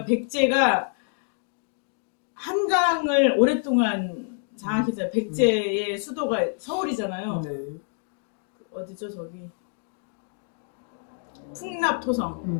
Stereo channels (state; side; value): silent; right; 60 dB below the other